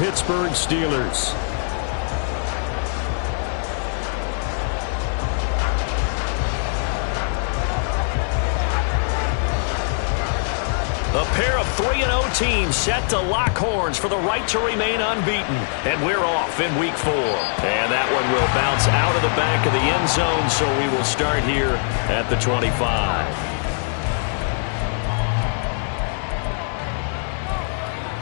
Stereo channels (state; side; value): silent; right; 64 dB below the other